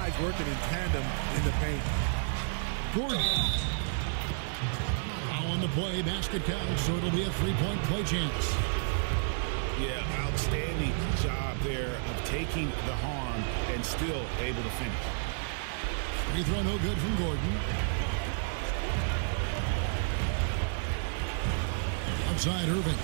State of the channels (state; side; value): silent; left; digital silence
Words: working in tandem in the paint. Gordon. Now on the play, basket count, so it'll be a 3-point play chance. Yeah, outstanding job there of taking the harm and still able to finish. Free throw no good from Gordon. Outside Irving.